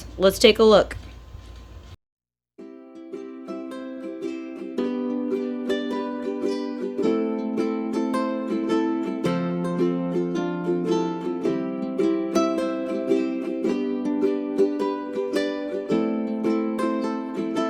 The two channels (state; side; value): identical; both; correlation 1.00